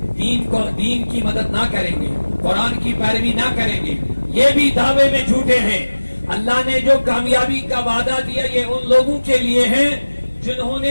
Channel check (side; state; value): both; inverted; correlation -1.00